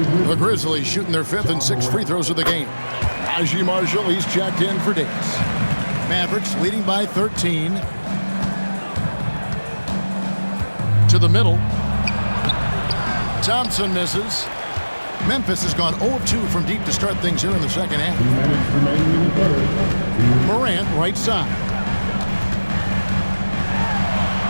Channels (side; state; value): both; inverted; correlation -1.00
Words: The Grizzlies shooting their 5th and 6th free throws of the game. Najee Marshall, he's checked in for Davis. Mavericks leading by 13. To the middle. Thompson misses. Memphis has gone 0-2 from deep to start things here in the second half. Morant, right side.